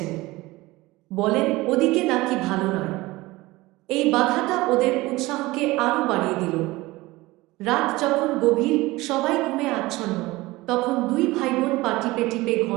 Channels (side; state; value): left; quieter; 20.1 dB